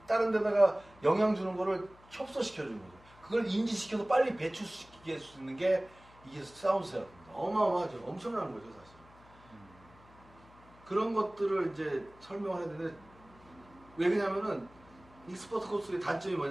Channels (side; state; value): left; noise; hum, 25 dB below the sound